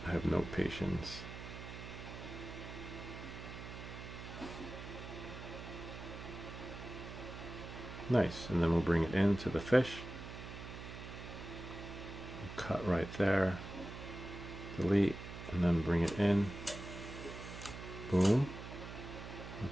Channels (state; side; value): noise; right; hum, 10 dB below the sound